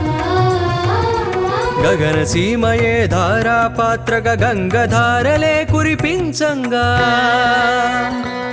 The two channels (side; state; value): both; identical; correlation 1.00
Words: గగన సీమయే ధారాపాత్రగా గంగధారలే కురిపించంగా